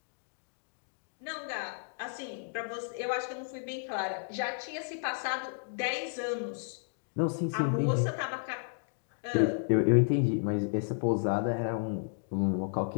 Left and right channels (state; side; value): silent; right; digital silence